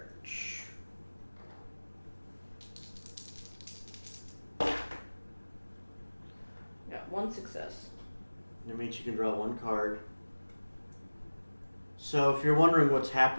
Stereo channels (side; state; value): both; inverted; correlation -1.00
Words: Got 1 success. That means you can draw 1 card. So if you're wondering what's